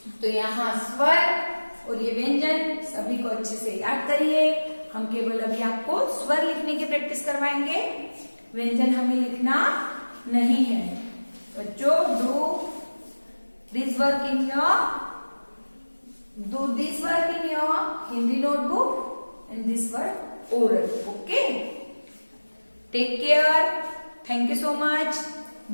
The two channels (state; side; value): inverted; both; correlation -1.00